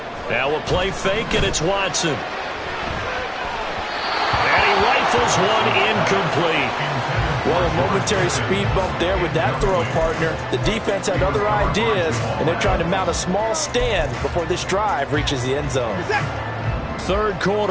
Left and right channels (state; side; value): identical; both; correlation 1.00